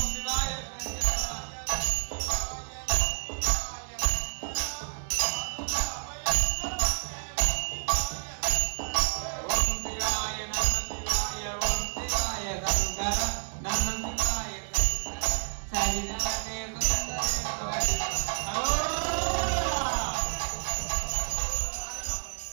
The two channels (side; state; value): left; silent; 58 dB below the other